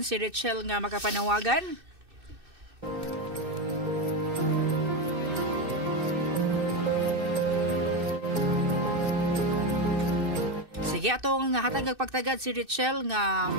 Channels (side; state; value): left; late; 2.6 ms